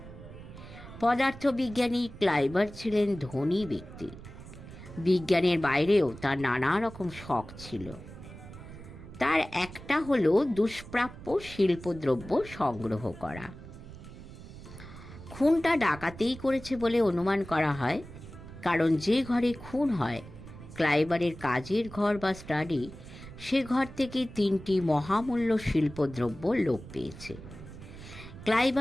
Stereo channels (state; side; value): noise; right; rumble, 15 dB below the sound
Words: পদার্থবিজ্ঞানী ক্লাইবার ছিলেন ধনী ব্যক্তি। বিজ্ঞানের বাইরেও তার নানা রকম শখ ছিল। তার একটা হলো দুষ্প্রাপ্য শিল্পদ্রব্য সংগ্রহ করা। খুনটা ডাকাতেই করেছে বলে অনুমান করা হয়, কারণ যে ঘরে খুন হয়, ক্লাইবারের কাজের ঘর বা স্টাডি, সে ঘর থেকে 3টি মহামূল্য শিল্পদ্রব্য লোপ পেয়েছে।